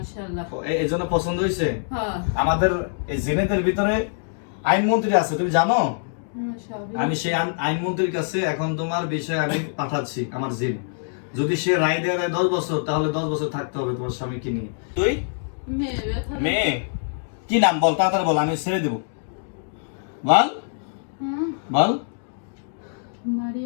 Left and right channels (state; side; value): silent; right; digital silence